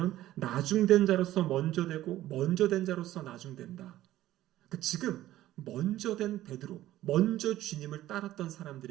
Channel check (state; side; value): quieter; left; 14.4 dB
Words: 나중된 자로서 먼저 되고 먼저 된 자로서 나중된다. 지금 먼저 된 베드로, 먼저 주님을 따랐던